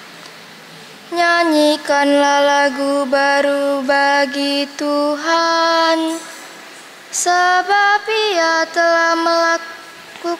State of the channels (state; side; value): identical; both; correlation 1.00